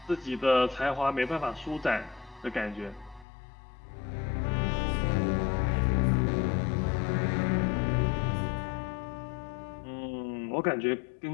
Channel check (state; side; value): drops out; right; at 3.2 s